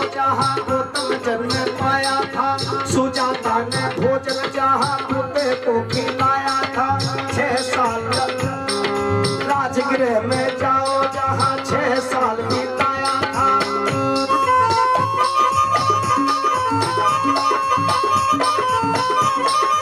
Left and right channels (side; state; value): both; identical; correlation 1.00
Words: जहाँ गौतम जन्म पाया था। सुजाता ने भोजन जहाँ कुत्ते को खिलाया था। 6 साल राजगृह में जाओ जहाँ 6 साल बिताया था।